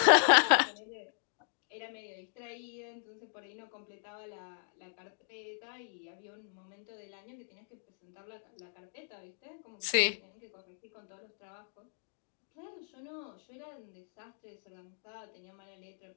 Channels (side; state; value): right; silent; digital silence